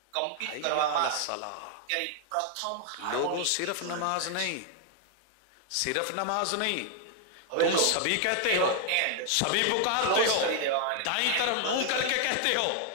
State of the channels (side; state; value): both; different; correlation 0.00